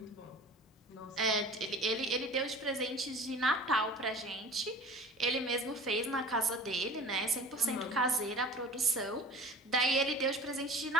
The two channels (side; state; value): both; normal; correlation 0.42